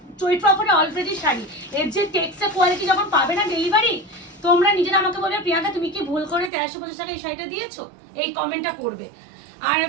চৈত্র অফারে অলরেডি শাড়ি, এর যে টেক্সচার কোয়ালিটি যখন পাবে না ডেলিভারি, তোমরা নিজেরা আমাকে বলবে প্রিয়াঙ্কা তুমি কি ভুল করে 1350 টাকা এই শাড়িটা দিয়েছো, এই কমেন্টটা করবে। আর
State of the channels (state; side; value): drops out; left; at 6.5 s